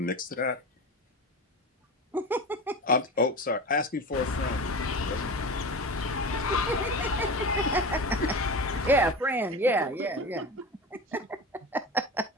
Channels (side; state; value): both; normal; correlation 0.29